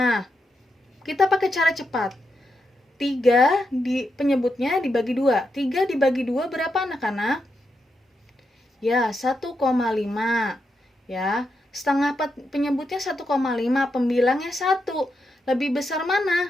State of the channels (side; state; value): both; normal; correlation 0.84